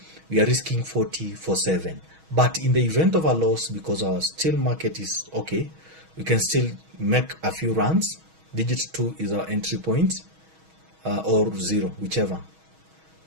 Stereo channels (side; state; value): left; late; 6.3 ms